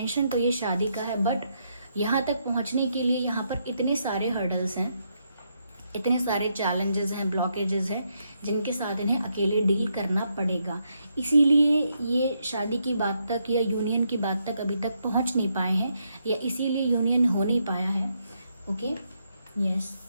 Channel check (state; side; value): inverted; both; correlation -0.78